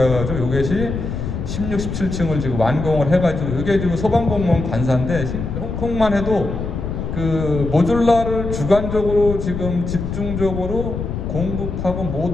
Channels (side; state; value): left; noise; rumble, 5 dB below the sound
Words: 해가지고 이것이 16, 17층을 지금 완공을 해가지고 이게 지금 소방공무원 관사인데 홍콩만 해도 그 모듈라를 주관적으로 지금 집중적으로 공급하고